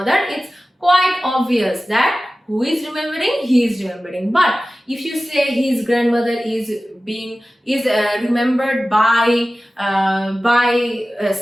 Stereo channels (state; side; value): normal; both; correlation 0.96